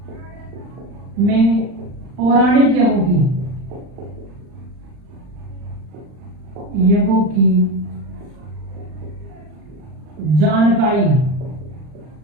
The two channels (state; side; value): late; left; 39 ms